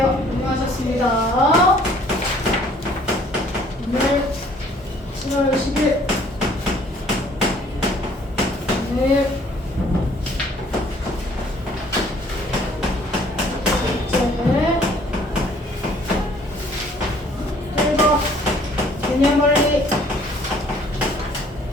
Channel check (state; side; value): normal; both; correlation 0.58